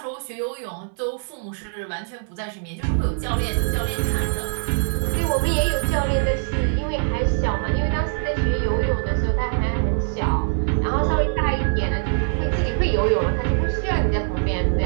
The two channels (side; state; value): left; silent; 64 dB below the other